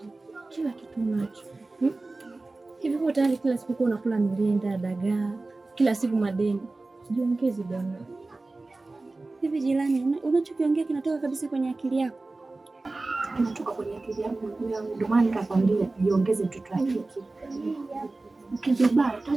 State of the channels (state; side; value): quieter; left; 3.2 dB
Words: kila kitu nacho. Hivi kwa tayari kila siku unakula mrenda, dagaa, kila siku madeni. Jiongeze bwana. Hivi jirani, unachokiongea kinatoka kabisa kwenye akili yako? Kinatoka kwenye akili yangu, ndio maana nikakwambia jiongeze mtoto wake. Ukijibaya